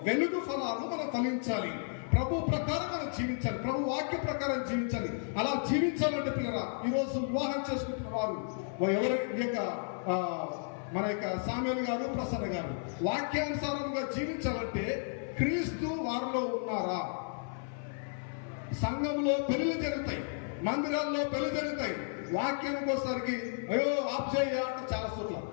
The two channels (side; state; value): right; silent; 56 dB below the other